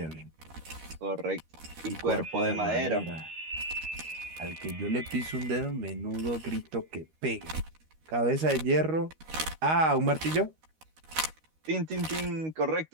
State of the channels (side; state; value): left; late; 13 ms